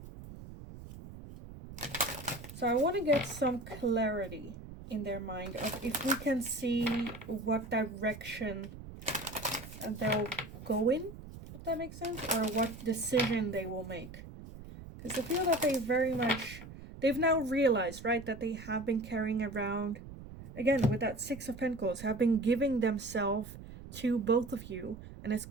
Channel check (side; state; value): right; noise; rumble, 14 dB below the sound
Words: So I want to get some clarity in their mind of if we can see what direction they'll go in, if that makes sense, or what decision they will make. Because I feel that they've now realized, right, that they have been carrying around, again, with that Six of Pentacles, have been giving themselves to both of you. And it's